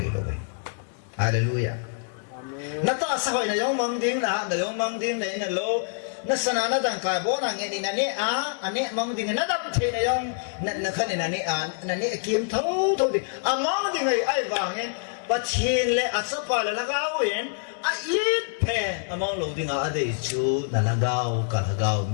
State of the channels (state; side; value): silent; right; 61 dB below the other